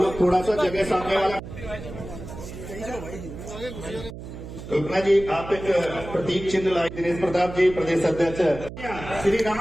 थोड़ा सा जगह सामने वाला। कल्पना जी आप एक प्रतीक चिन्ह लाई। दिनेश प्रताप जी प्रदेश अध्यक्ष। श्री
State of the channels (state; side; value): noise; right; hum, 11 dB below the sound